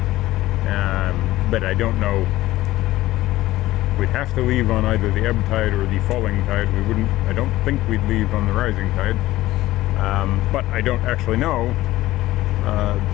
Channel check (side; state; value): right; quieter; 16.4 dB